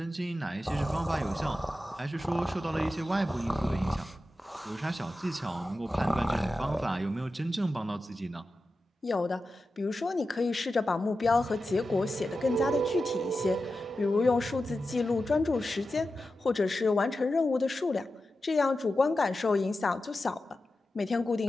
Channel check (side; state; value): both; normal; correlation 0.92